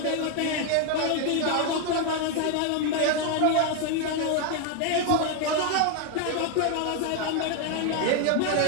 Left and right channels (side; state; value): both; different; correlation 0.01